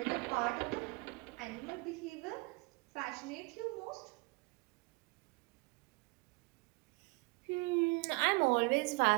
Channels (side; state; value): left; quieter; 28.2 dB